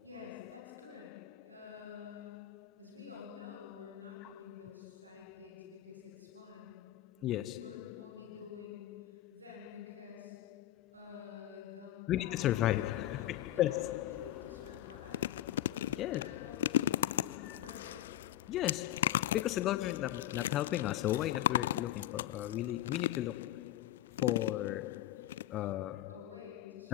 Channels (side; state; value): right; quieter; 13.2 dB